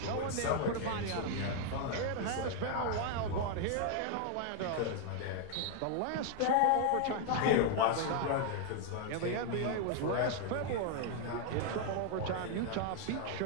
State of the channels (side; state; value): both; different; correlation 0.00